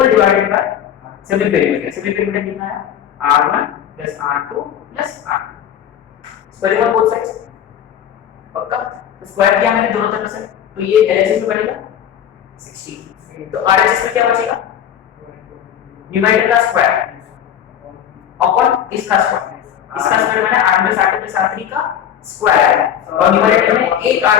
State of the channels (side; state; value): right; quieter; 9.6 dB